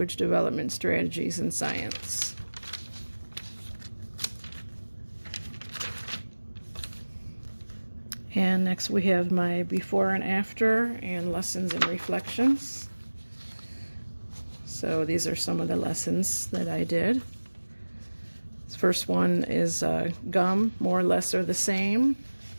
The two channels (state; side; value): inverted; both; correlation -1.00